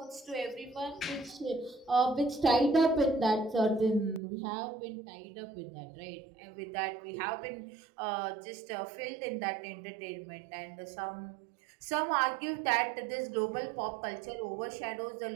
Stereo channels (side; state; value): left; drops out; at 4.2 s